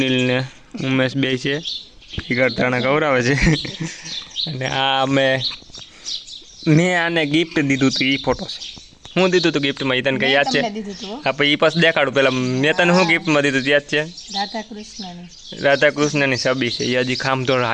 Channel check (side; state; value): both; identical; correlation 1.00